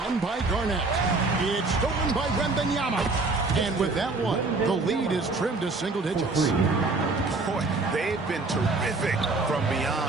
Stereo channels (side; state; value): left; quieter; 3.6 dB